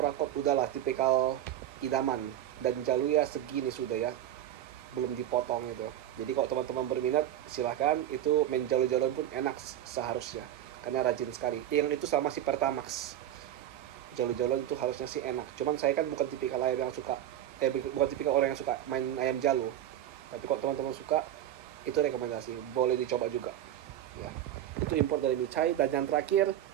udahlah tipikal idaman. Dan jalunya segini sudah ya, belum dipotong itu. Jadi kalau teman-teman berminat silahkan, itu main jalur-jalur pun enak seharusnya, karena rajin sekali. Yang itu sama si Pertamax, jalur-jalur itu harusnya sih enak. Cuman saya kan bukan tipikal ayam yang suka, bukan tipikal orang yang suka main ayam jalur. Tapi kalau teman-teman suka, itu rekomendasi, boleh dicoba juga ya. Itu import dari Michai. Dan yang terakhir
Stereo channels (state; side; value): quieter; left; 12.0 dB